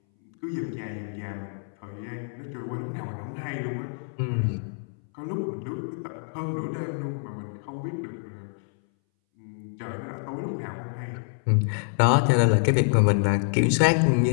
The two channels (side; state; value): right; silent; 60 dB below the other